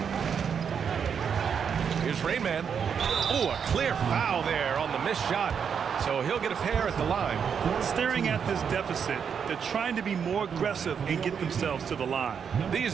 Here's Rainman. Oh, a clear foul there on the missed shot. So he'll get a pair at the line. Staring at this deficit, they're trying to be more aggressive and get themselves to the line. These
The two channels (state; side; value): quieter; left; 7.1 dB